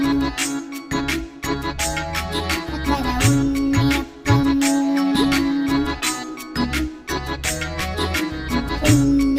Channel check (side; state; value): both; identical; correlation 1.00